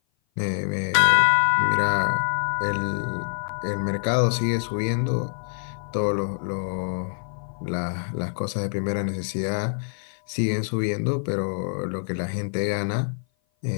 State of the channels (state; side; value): silent; right; 57 dB below the other